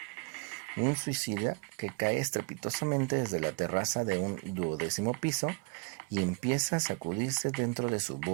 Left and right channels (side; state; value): left; quieter; 31.1 dB